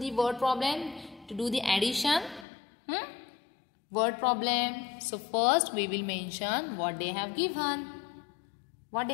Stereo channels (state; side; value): drops out; right; at 2.5 s